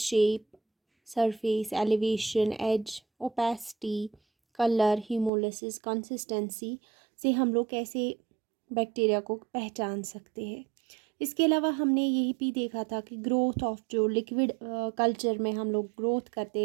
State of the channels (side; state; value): left; drops out; at 5.3 s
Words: shape, surface, elevation, edge, opacity, color, hemolysis, consistency से हम लोग कैसे बैक्टीरिया को पहचान सकते हैं। इसके अलावा हमने यही भी देखा था कि ग्रोथ ऑफ जो लिक्विड कल्चर में हम लोग ग्रोथ करते